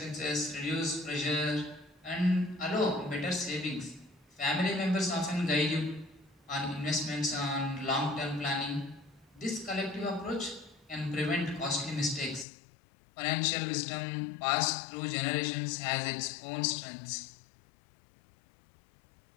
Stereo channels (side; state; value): right; drops out; at 12.5 s